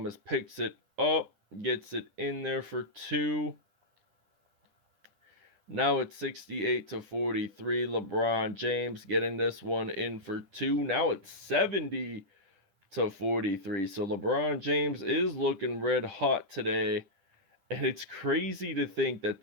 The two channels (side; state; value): left; late; 10 ms